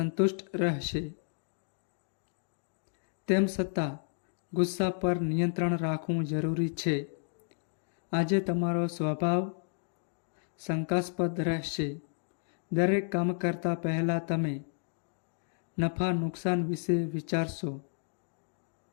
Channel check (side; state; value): right; silent; 56 dB below the other